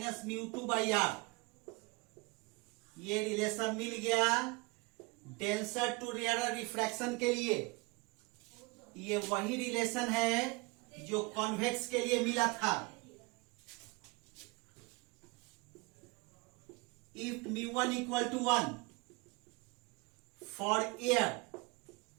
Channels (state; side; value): quieter; left; 26.5 dB